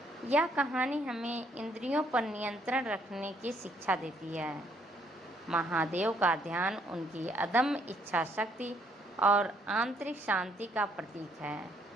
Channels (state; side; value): normal; both; correlation 0.68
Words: यह कहानी हमें इंद्रियों पर नियंत्रण रखने की शिक्षा देती है। महादेव का ध्यान उनकी अदम्य इच्छा शक्ति और आंतरिक शांति का प्रतीक है।